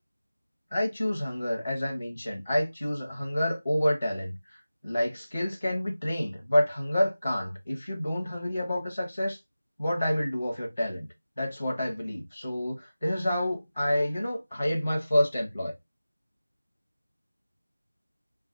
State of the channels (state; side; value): inverted; both; correlation -0.95